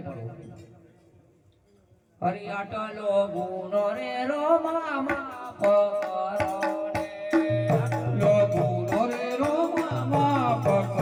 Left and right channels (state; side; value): identical; both; correlation 1.00